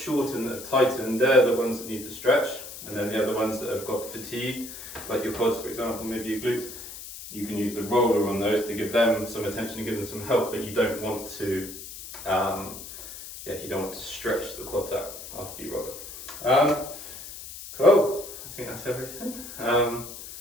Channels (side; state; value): left; noise; hiss, 12 dB below the sound